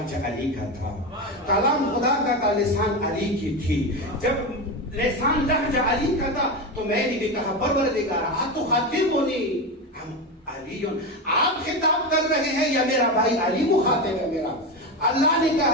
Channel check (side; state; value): both; normal; correlation 0.17